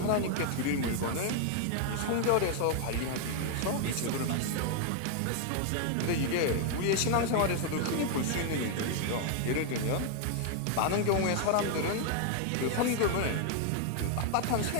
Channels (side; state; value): both; different; correlation 0.00